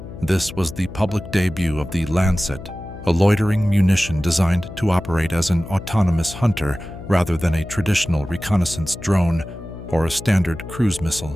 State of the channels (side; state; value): left; noise; hum, 13 dB below the sound